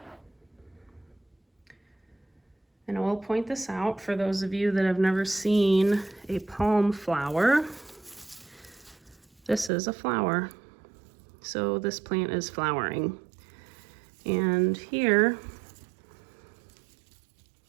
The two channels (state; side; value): drops out; left; at 9.7 s